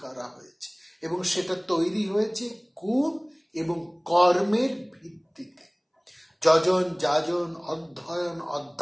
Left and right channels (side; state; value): both; identical; correlation 1.00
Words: করা হয়েছে, এবং সেটা তৈরি হয়েছে গুণ এবং কর্মের ভিত্তিতে। যজন, যাজন, অধ্যয়ন,